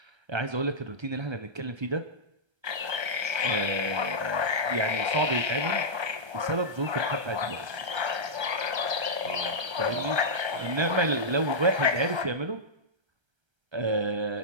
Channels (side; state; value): left; late; 1.3 ms